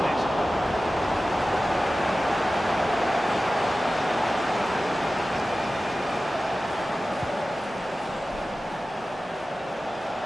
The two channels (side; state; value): both; normal; correlation 0.95